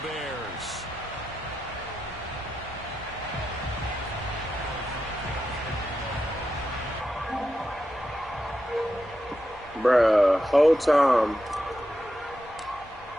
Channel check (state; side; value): normal; both; correlation 0.88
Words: Bears. Bruh, whole time.